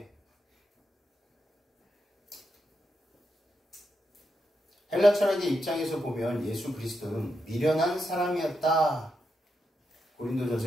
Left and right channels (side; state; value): both; normal; correlation 0.84